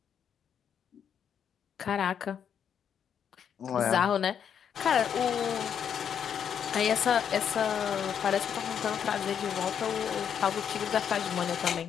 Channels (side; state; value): right; quieter; 8.2 dB